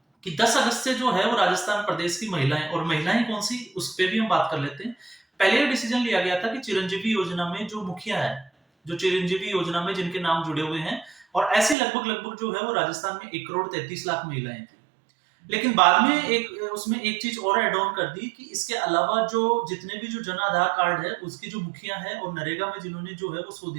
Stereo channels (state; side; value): drops out; left; at 11.8 s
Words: कि 10 अगस्त से जो है वो राजस्थान प्रदेश की महिलाएं, और महिलाएं कौन सी उस पे भी हम बात कर लेते हैं। पहले ये डिसीजन लिया गया था कि चिरंजीवी योजना में जो मुखिया है, जो चिरंजीवी योजना में जिनके नाम जुड़े हुए हैं, और ऐसे लगभग लगभग जो है वो राजस्थान में 1 करोड़ 33 लाख महिलाएं थी। लेकिन बाद में एक उसमें एक चीज और ऐड ऑन कर दी कि इसके अलावा जो जितने भी जो जन आधार कार्ड है उसकी जो मुखिया है और नरेगा में जिन्होंने जो है वो 100